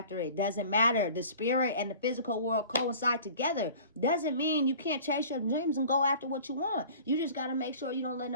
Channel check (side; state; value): both; inverted; correlation -0.45